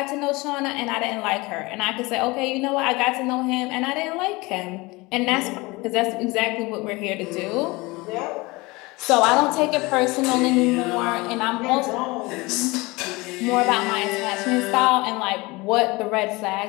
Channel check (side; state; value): right; quieter; 23.4 dB